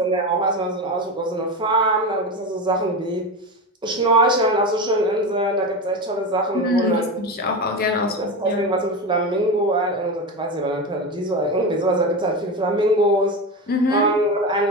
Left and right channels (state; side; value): normal; both; correlation 0.21